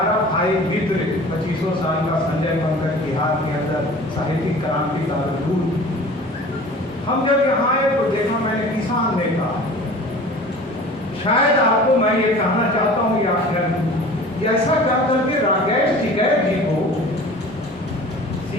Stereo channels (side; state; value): both; normal; correlation 0.43